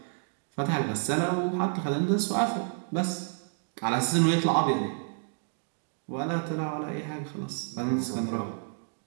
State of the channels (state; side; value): silent; left; digital silence